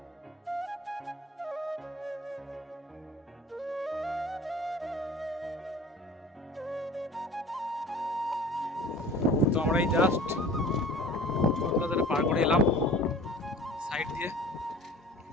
তো আমরা এই জাস্ট টোল প্লাজাটা পার করে এলাম সাইড দিয়ে।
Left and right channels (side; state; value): both; normal; correlation 0.44